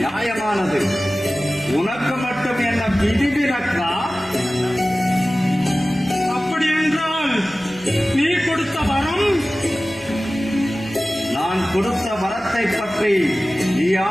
உனக்கு மட்டும் என்ன விதிவிலக்கா? அப்படி என்றால் நீ கொடுத்த வரம் நான் கொடுத்த வரத்தை பற்றி நீ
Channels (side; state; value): left; noise; hum, 27 dB below the sound